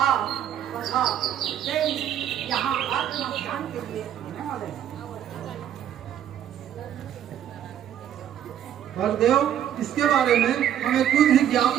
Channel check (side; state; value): left; quieter; 10.4 dB